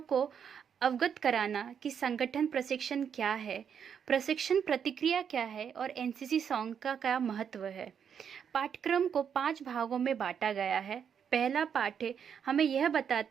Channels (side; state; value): left; quieter; 7.7 dB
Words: को अवगत कराना कि संगठन प्रशिक्षण क्या है, प्रशिक्षण प्रतिक्रिया क्या है और एनसीसी सॉन्ग का क्या महत्व है। पाठ्यक्रम को 5 भागों में बांटा गया है। पहला पाठ हमें यह